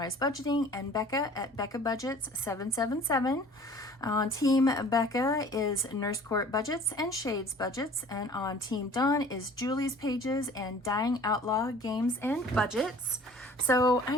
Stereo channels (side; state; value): both; normal; correlation 0.48